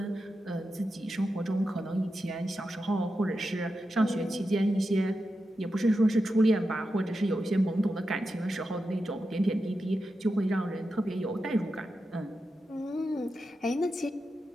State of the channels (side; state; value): both; normal; correlation 0.89